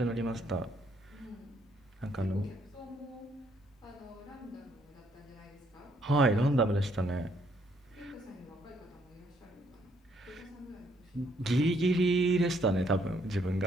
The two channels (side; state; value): both; normal; correlation 0.69